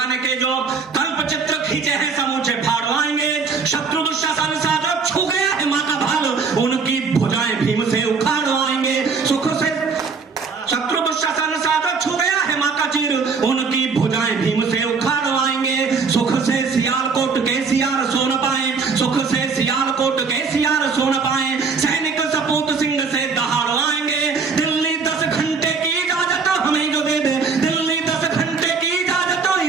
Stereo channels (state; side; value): quieter; left; 5.0 dB